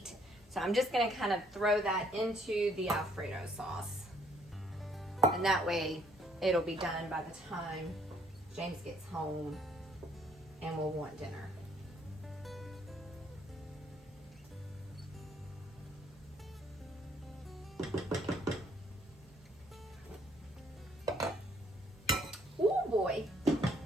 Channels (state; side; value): normal; both; correlation 0.65